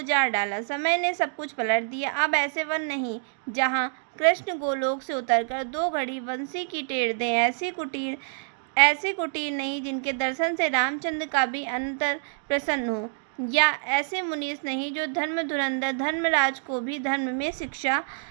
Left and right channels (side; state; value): left; silent; digital silence